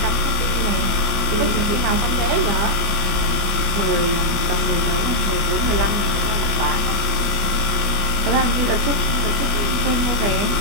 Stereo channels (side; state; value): left; late; 25 ms